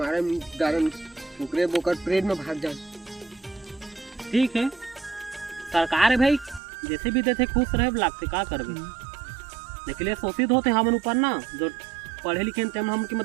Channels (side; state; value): left; drops out; at 6.6 s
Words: दारन ओकरे बोकर परेड में भाग जाए ठीक है सरकार है भाई जैसे भी देते खुश रहे लागते का करबे लेकिन शोषित होते हमन ऊपर ना जो पढ़े लिखे हम की